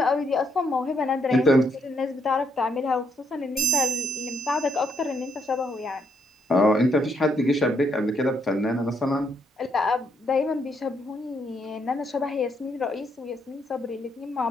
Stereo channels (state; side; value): normal; both; correlation 0.74